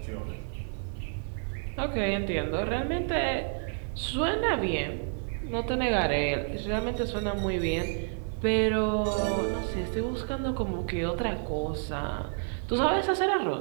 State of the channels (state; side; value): silent; left; 58 dB below the other